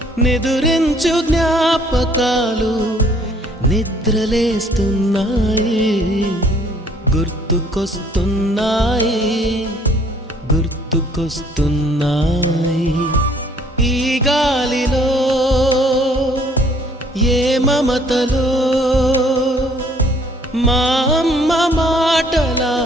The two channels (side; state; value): both; normal; correlation 0.60